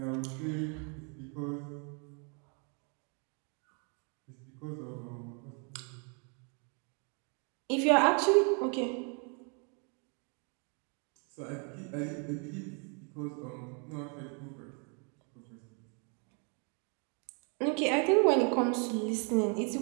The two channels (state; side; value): quieter; left; 37.5 dB